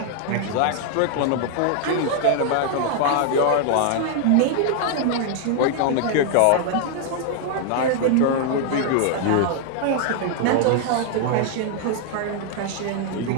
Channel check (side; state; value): both; different; correlation 0.00